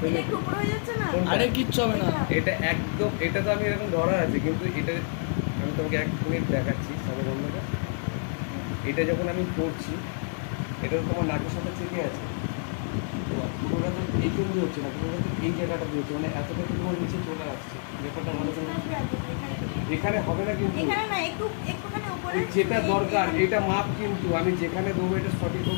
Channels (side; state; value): right; silent; 60 dB below the other